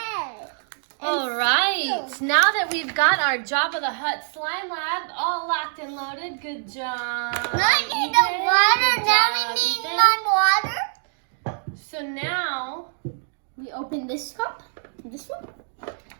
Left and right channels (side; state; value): left; silent; digital silence